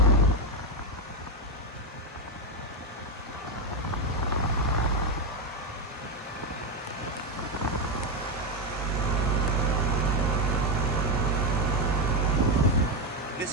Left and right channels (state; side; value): normal; both; correlation 0.08